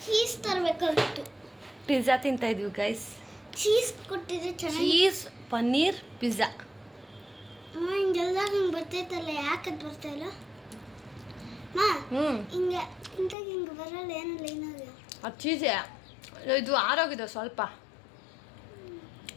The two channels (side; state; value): right; drops out; at 13.4 s